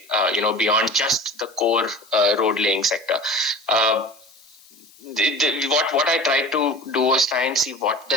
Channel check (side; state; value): left; noise; hiss, 26 dB below the sound